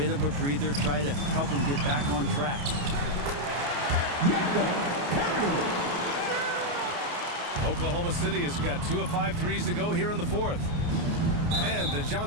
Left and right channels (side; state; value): left; late; 28 ms